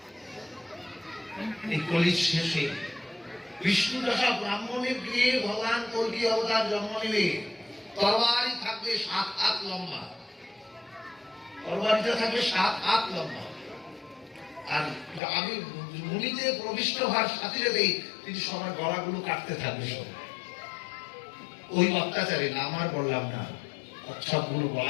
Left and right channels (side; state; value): right; drops out; at 15.2 s